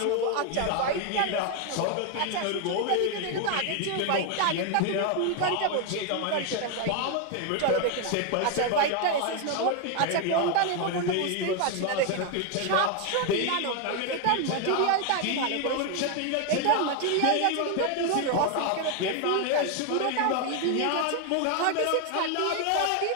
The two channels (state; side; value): different; both; correlation 0.01